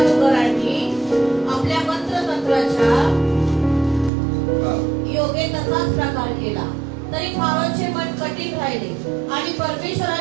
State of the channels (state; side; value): drops out; left; at 4.1 s